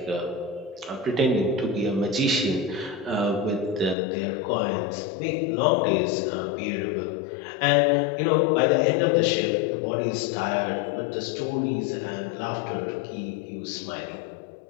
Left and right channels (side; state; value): right; drops out; at 4.0 s